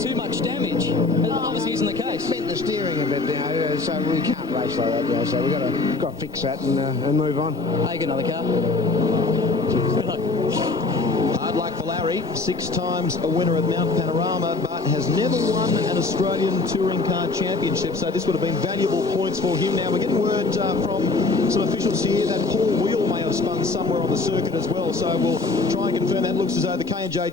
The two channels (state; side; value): quieter; right; 3.7 dB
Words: too much damage. Obviously, isn't the case. Bent the steering a bit, so we can't race like that. So we've got to fix that and move on. Take another car. Hard luck for Larry, 6 times a winner at Mount Panorama, but has never won an Australian Touring Car Championship, so this would have been valuable points for him. Now, we're getting word from some officials here that Paul Wheel may have spun somewhere on the circuit as well, so we'll try and confirm that. Looks as though the K&J